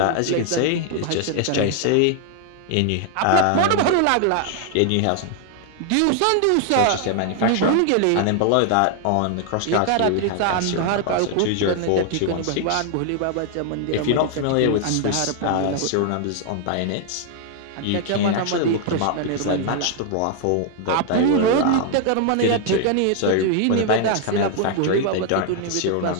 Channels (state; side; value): different; both; correlation 0.00